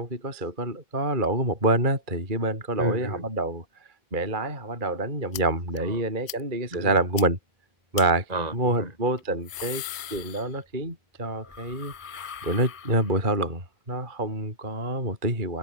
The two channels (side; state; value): left; late; 1.0 ms